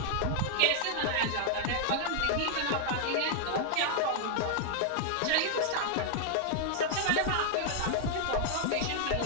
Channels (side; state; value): both; different; correlation 0.00